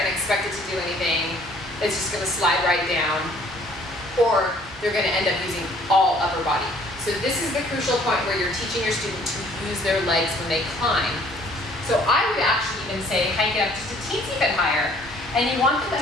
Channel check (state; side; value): normal; both; correlation 0.58